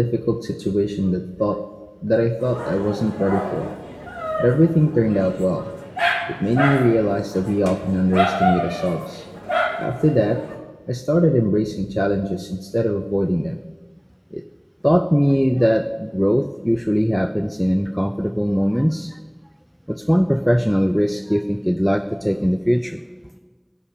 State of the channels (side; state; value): both; identical; correlation 1.00